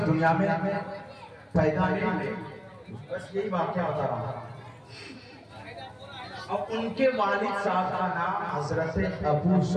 دنیا میں پیدا نہیں ہوئے، بس یہی واقعہ بتا رہا ہوں۔ اور ان کے والد صاحب کا نام حضرت ابو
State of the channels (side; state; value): both; identical; correlation 1.00